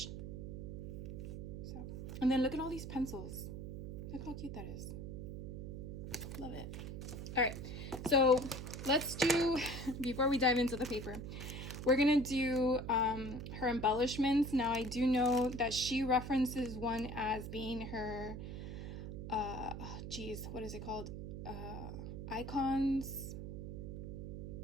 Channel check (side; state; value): right; noise; hum, 7 dB below the sound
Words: So, and then look at all these pencils. Look how cute that is. Love it. All right, so let's do, before we dive into the paper, we're gonna do her embellishments. Now I do know that she references one as being her, geez, what is it called? Icons.